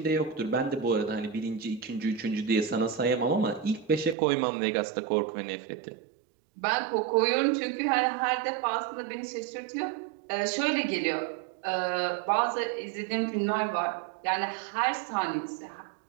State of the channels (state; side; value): drops out; left; at 4.2 s